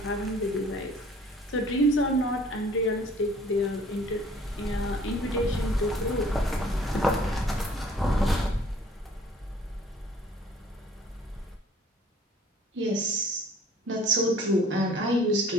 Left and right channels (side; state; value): both; normal; correlation 0.55